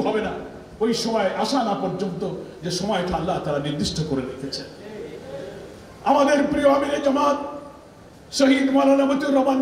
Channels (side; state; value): both; identical; correlation 1.00